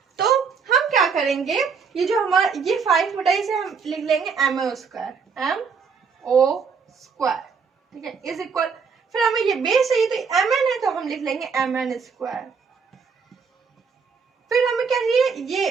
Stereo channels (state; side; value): quieter; left; 5.7 dB